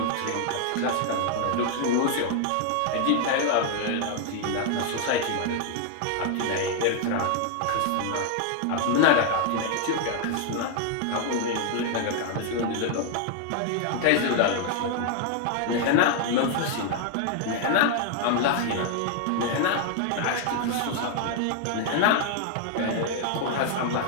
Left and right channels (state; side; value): different; both; correlation 0.00